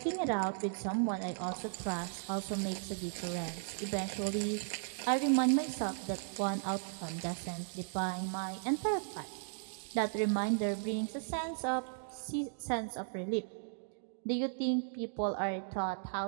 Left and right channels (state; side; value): silent; left; digital silence